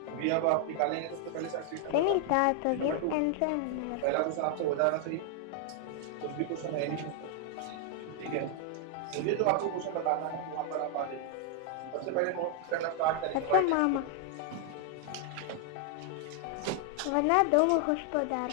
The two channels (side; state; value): both; different; correlation 0.00